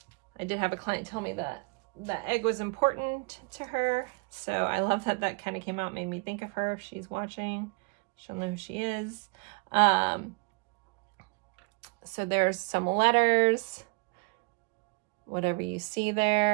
I did have a client tell me that that egg was important to her, so I love that that kind of came out, made me think of her. If she's watching, she'll know who she is. So there's some letters, whatever you see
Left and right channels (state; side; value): quieter; left; 32.9 dB